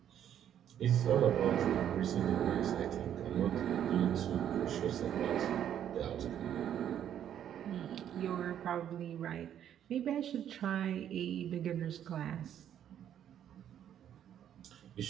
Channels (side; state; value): left; quieter; 10.0 dB